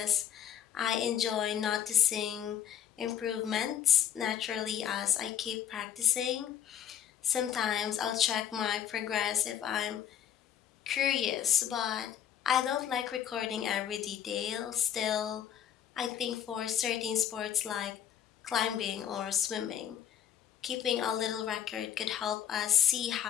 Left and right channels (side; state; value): right; quieter; 9.7 dB